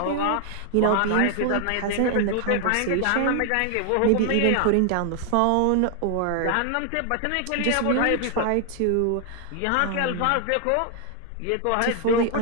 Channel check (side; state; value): both; different; correlation 0.00